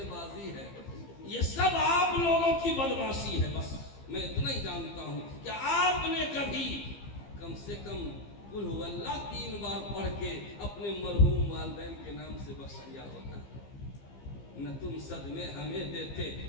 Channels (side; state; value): right; late; 15 ms